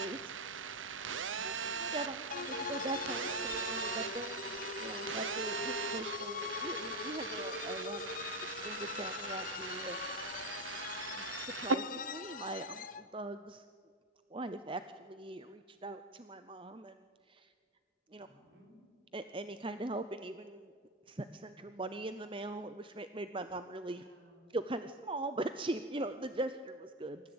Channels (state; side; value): normal; both; correlation 0.12